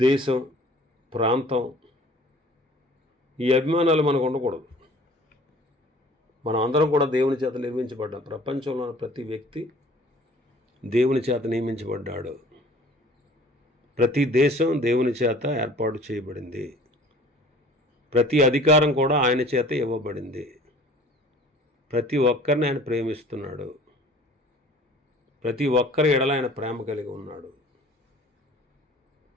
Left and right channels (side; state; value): both; normal; correlation 0.49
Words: ప్రాంతం, ఈ అభిమానాలు మనకు ఉండకూడదు. మనం అందరం కూడా దేవుని చేత నిర్మించబడ్డాం. ప్రపంచంలో ఉన్న ప్రతి వ్యక్తి దేవుని చేత నియమించబడ్డాడు. ప్రతి దేశం దేవుని చేత ఏర్పాటు చేయబడింది. ప్రతి అధికారం కూడా ఆయన చేత ఇవ్వబడింది. ప్రతి ఒక్కరిని ఆయన ప్రేమిస్తున్నాడు. ప్రతి ఒక్కరి ఎడల ఆయన ప్రేమ కలిగి ఉన్నాడు.